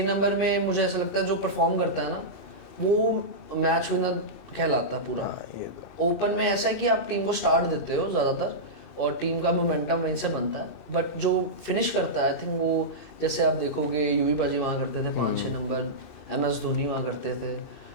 नंबर में मुझे ऐसा लगता है जो परफॉर्म करता है ना, वो मैच विनर कहलाता है पूरा। ओपन में ऐसा है कि आप टीम को स्टार्ट देते हो ज़्यादातर, और टीम का मोमेंटम वहीं से बनता है, बट जो फिनिश करता है आई थिंक वो, जैसे आप देखोगे यूवी पाजी वहाँ करते थे 5-6 नंबर, MS धोनी वहाँ करते थे।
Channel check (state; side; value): late; right; 2.6 ms